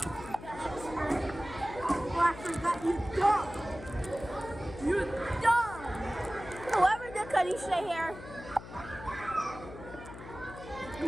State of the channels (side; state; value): left; noise; hum, 14 dB below the sound